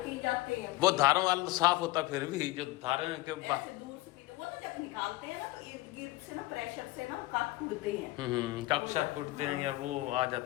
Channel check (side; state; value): right; quieter; 19.6 dB